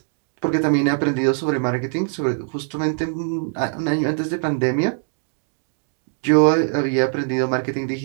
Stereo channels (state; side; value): silent; left; 62 dB below the other